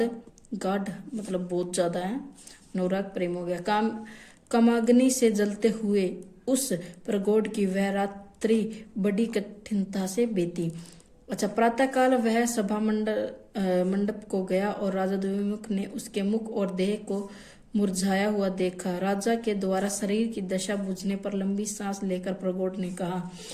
गाढ़ मतलब बहुत ज्यादा है, अनुराग प्रेम हो गया। कामाग्नि से जलते हुए उस प्रगोड की वह रात्रि बड़ी कठिनता से बीती। अच्छा, प्रातःकाल वह सभा मंडप को गया, और राजा द्विमुख ने उसके मुख और देह को मुरझाया हुआ देखा। राजा के द्वारा शरीर की दशा बुझने पर लंबी सांस लेकर प्रगोड ने कहा,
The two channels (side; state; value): both; identical; correlation 1.00